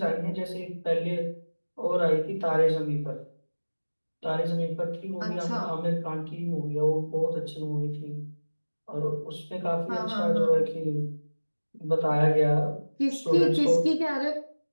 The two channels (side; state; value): both; inverted; correlation -1.00